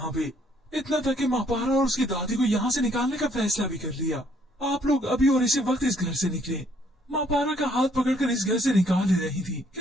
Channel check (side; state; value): both; normal; correlation 0.66